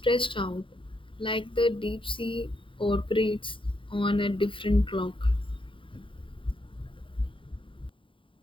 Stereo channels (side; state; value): right; late; 0.25 ms